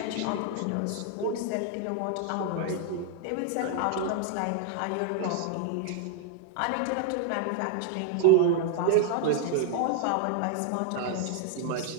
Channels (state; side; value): different; both; correlation 0.00